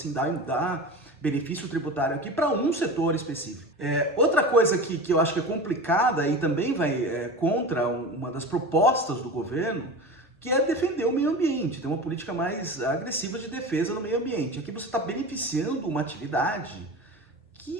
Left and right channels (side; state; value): both; normal; correlation 0.30